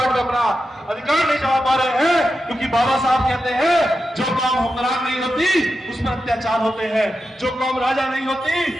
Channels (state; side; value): normal; both; correlation 0.89